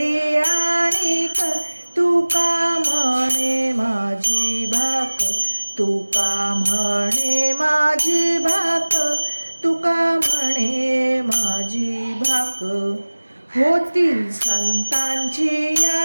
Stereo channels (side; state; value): both; inverted; correlation -1.00